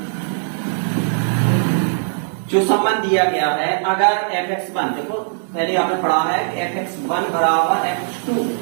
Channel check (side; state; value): left; silent; 66 dB below the other